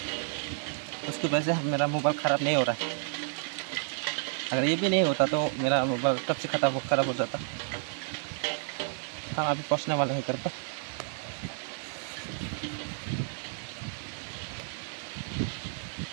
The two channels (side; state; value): left; silent; 57 dB below the other